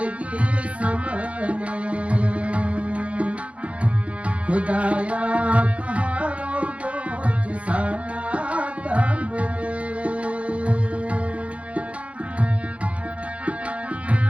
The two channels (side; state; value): left; late; 0.063 ms